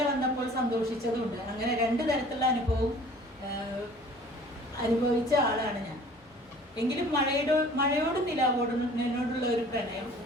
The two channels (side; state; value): both; normal; correlation 0.49